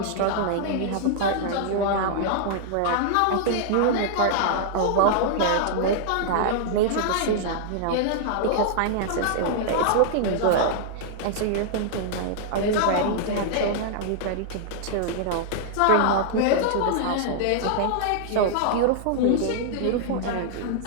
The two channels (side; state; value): both; different; correlation -0.01